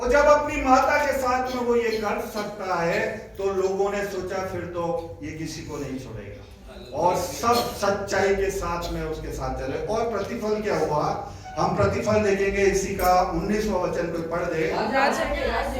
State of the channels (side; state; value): both; identical; correlation 1.00